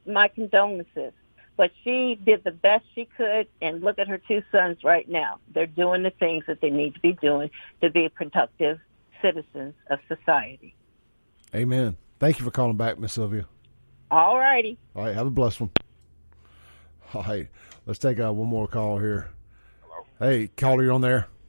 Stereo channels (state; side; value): inverted; both; correlation -1.00